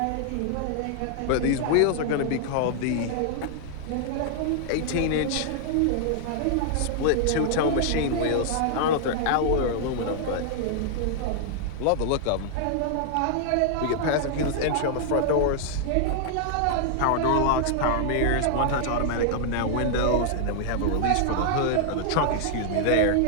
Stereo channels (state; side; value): different; both; correlation -0.01